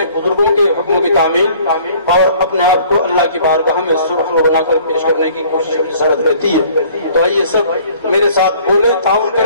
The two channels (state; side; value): inverted; both; correlation -0.54